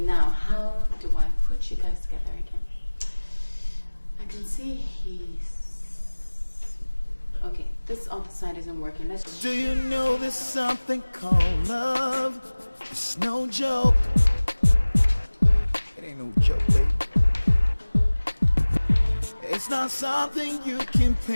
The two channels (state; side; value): inverted; both; correlation -1.00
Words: how do I put you guys together again? I can see he's... Okay, this other side isn't working. Let's... Do you know there's something called love? It's no joke. It ain't no joke, baby. It's not something you can